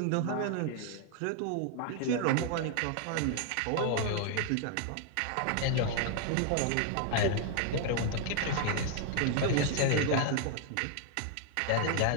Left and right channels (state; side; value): different; both; correlation 0.00